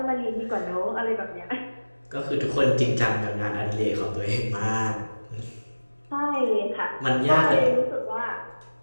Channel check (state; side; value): inverted; both; correlation -1.00